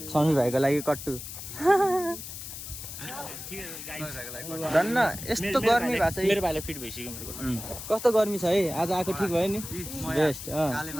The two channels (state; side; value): noise; left; hiss, 10 dB below the sound